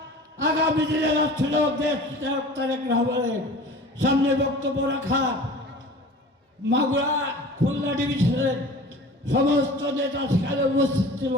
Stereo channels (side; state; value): both; normal; correlation 0.41